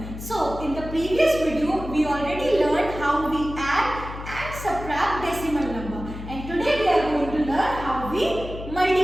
So in the previous video we already learned how we add and subtract decimal number, and today we are going to learn how we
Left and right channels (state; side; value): noise; left; hum, 10 dB below the sound